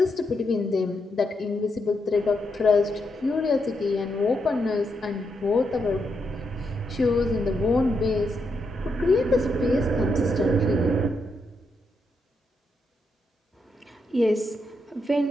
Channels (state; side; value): normal; both; correlation 0.81